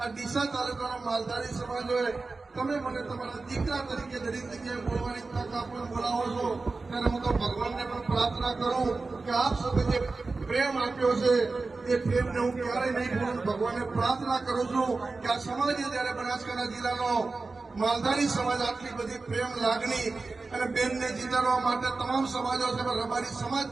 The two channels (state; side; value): quieter; left; 3.8 dB